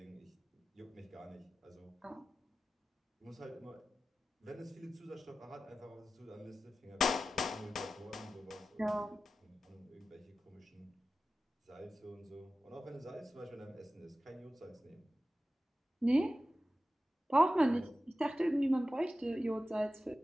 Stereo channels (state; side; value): normal; both; correlation 0.94